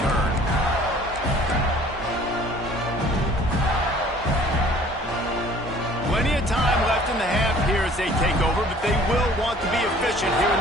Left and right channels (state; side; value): normal; both; correlation 0.53